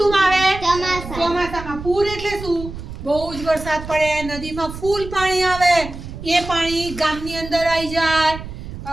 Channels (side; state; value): right; noise; rumble, 11 dB below the sound